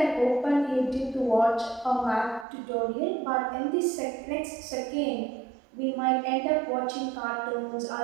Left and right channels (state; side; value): drops out; left; at 2.5 s